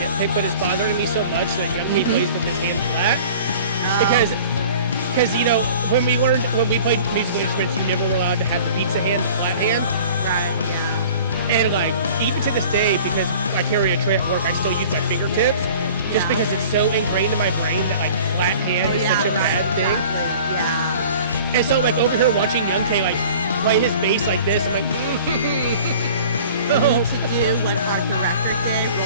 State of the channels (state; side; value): inverted; both; correlation -0.45